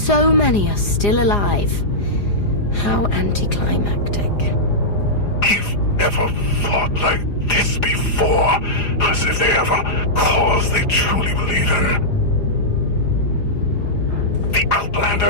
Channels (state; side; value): late; right; 4.9 ms